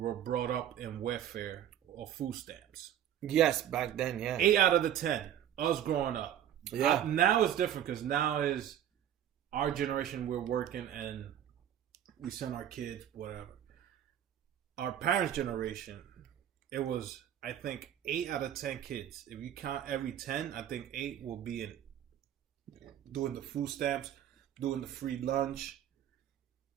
brought up in welfare or food stamps. Yes, back then, yeah. 8 out of the 10, us growing up. Yeah. Now it's different because now is our generation. We're working and we send our kids whatever. Our parents' generation, it was, I think, 8 out of 10 kids. If you count every 10, I think 8 will be in doing the food stamps, doing the free lunch.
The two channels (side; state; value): left; quieter; 10.6 dB